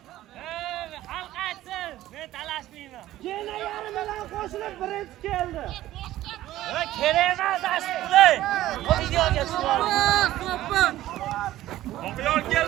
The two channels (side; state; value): left; quieter; 14.6 dB